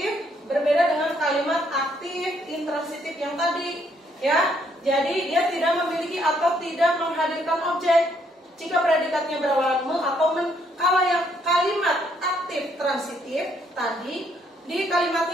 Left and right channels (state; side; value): normal; both; correlation 0.70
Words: berbeda dengan kalimat aktif intransitif yang tadi, ya. Jadi dia tidak memiliki atau tidak menghadirkan objek jika predikatnya berawalan me atau men. Kalau yang kalimat aktif transitif tadi di